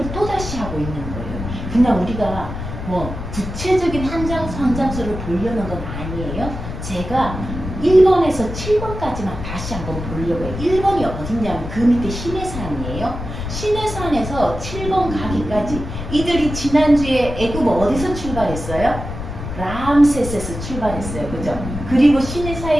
또다시 하고 있는 거예요. 그냥 우리가 뭐 구체적인 한 장, 한 장수를 보려는 건 아니에요. 제가 1번에서 7번까지만 다시 한번 보려고 해요. 1번이 어딨냐면 그 밑에 시내산이에요. 시내산에서 7번 가기까지 이들이 지난주에 애굽 어디서 출발했어요? 람세스에서 출발했어요. 그죠? 그리고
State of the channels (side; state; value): left; noise; rumble, 7 dB below the sound